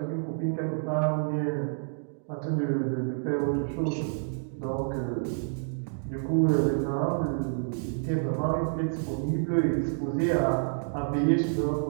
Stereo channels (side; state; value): left; silent; digital silence